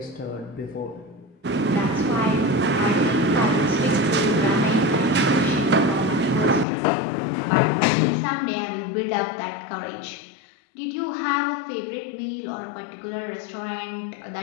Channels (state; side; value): drops out; right; at 6.7 s